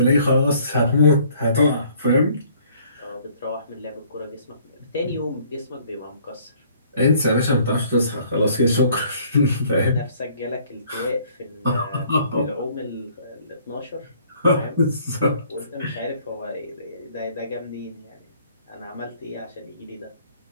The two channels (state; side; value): inverted; both; correlation -0.59